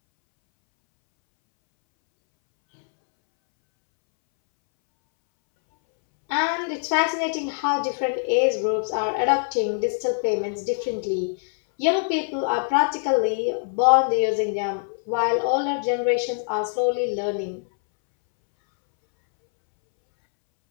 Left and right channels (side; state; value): right; silent; 63 dB below the other